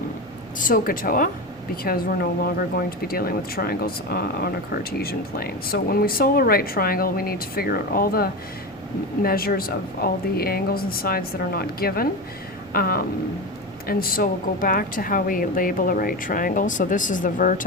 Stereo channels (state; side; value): normal; both; correlation 0.21